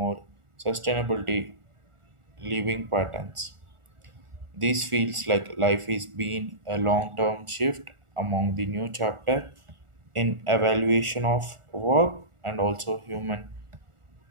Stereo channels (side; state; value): left; late; 1.4 ms